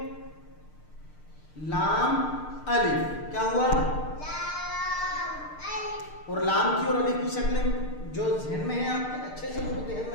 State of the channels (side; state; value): right; late; 6.6 ms